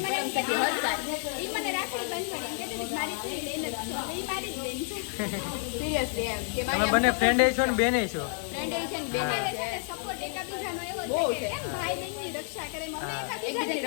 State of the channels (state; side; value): silent; right; 56 dB below the other